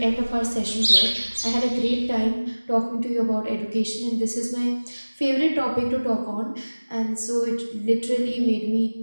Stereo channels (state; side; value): inverted; both; correlation -1.00